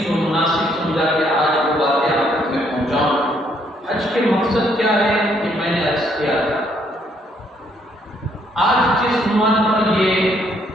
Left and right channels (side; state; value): both; normal; correlation 0.69